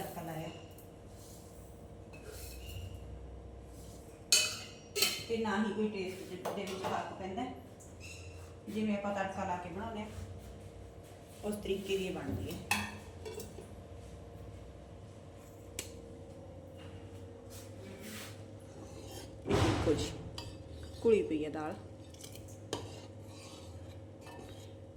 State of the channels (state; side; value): identical; both; correlation 1.00